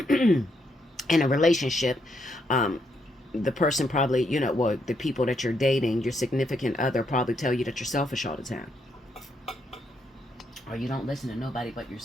a relationship. The person probably, you know, well, the people that you're dating, your significant other, probably tell you that you're selfish all the time, or you don't listen to nobody but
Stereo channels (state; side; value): normal; both; correlation 0.77